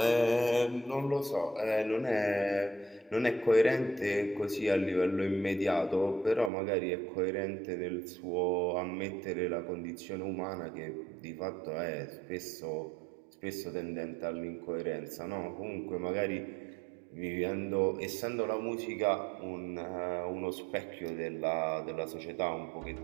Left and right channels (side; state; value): left; drops out; at 6.5 s